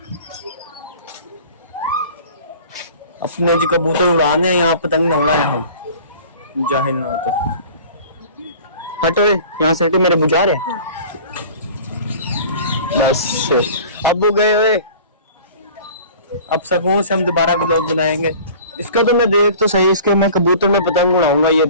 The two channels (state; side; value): inverted; both; correlation -0.44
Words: अपने जो कबूतर उड़ाने हैं यहाँ पतंग न उड़ाए हम। जाहिल ना हो तो हटो यहाँ से। हटे मेरे बुझारे। बस अब वो गए हुए। अब सुकून से हम दोबारा व्लॉग बनाएंगे। इसका तो मैं देख तो सही। इसके मैं कबूतर में पतंग उड़ाऊंगा। ये